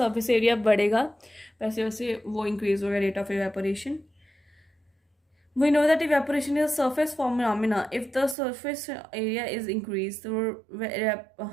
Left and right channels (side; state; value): left; drops out; at 8.3 s